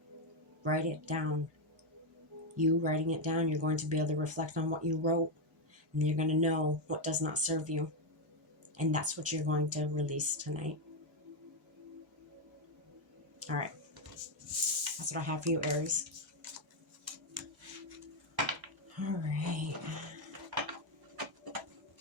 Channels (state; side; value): normal; both; correlation 0.04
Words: Write it down. You writing it down, you're going to be able to reflect on what you wrote, and you're going to know what does not serve you. And that's what you're going to release tonight. All right. That's what I have for you, Aries. All right.